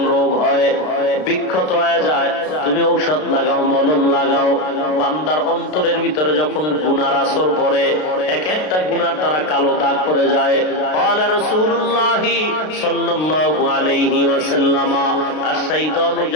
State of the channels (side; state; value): right; late; 33 ms